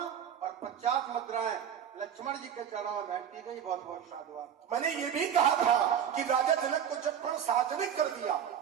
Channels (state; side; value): quieter; left; 8.8 dB